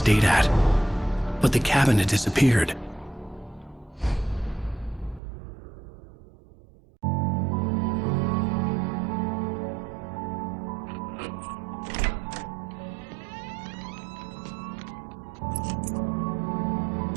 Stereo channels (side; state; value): left; drops out; at 5.2 s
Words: at. But the cabin had disappeared.